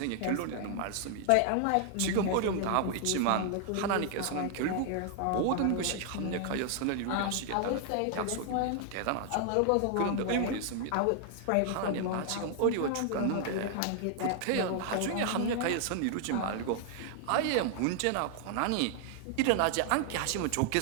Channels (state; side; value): different; both; correlation 0.00